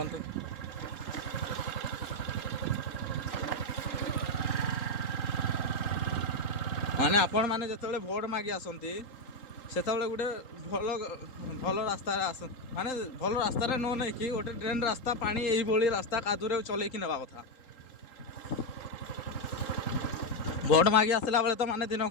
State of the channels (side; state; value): right; late; 3.8 ms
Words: माने आपण माने जिते भोट मागी आसती से गोटे भल भल रास्ता आस माने भल रास्तार न नहीं कि गोटे ट्रेन रास्ता पानी यही रास्ता कादूरे चलैकी नेबा कथा भोट मागी आसला बेले तो माने दिन